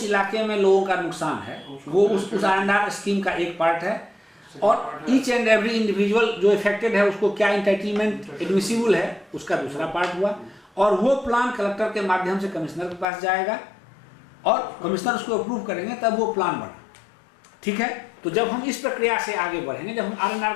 इलाके में लोगों का नुकसान है वो उस R&R स्कीम का एक पार्ट है, और ईच एंड एवरी इंडिविजुअल जो इफेक्टेड है उसको क्या इंटाइटलमेंट एडमिसिबल है उसका दूसरा पार्ट हुआ। और वो प्लान कलेक्टर के माध्यम से कमिश्नर के पास जाएगा और कमिश्नर उसको अप्रूव करेंगे, तब वो प्लान बना। ठीक है, तो जब हम इस प्रक्रिया से आगे बढ़ेंगे, जब हम R&R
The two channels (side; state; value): right; drops out; at 13.1 s